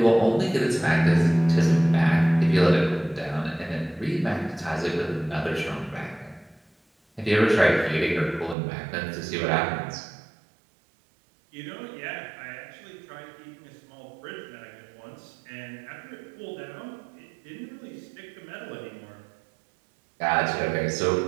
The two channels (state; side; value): drops out; left; at 8.6 s